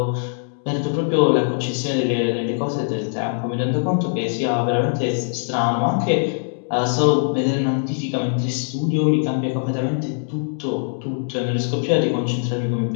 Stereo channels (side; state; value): right; silent; digital silence